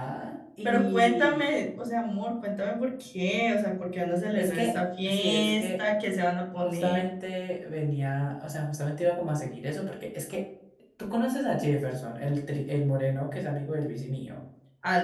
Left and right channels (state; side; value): identical; both; correlation 1.00